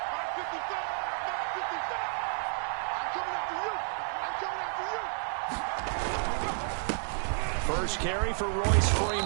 First carry for Royce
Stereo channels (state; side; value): silent; left; 57 dB below the other